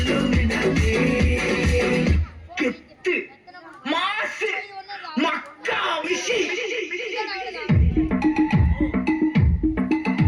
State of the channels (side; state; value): both; identical; correlation 1.00